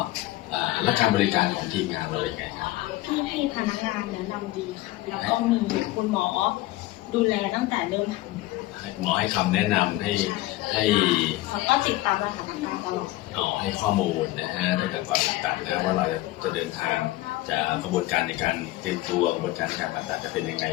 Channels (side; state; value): right; quieter; 17.5 dB